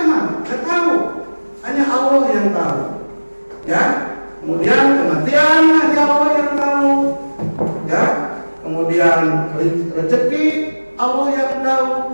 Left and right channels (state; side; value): inverted; both; correlation -1.00